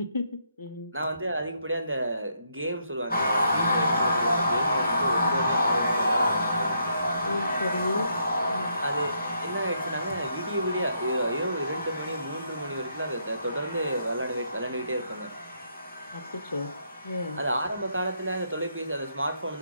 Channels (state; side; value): inverted; both; correlation -0.75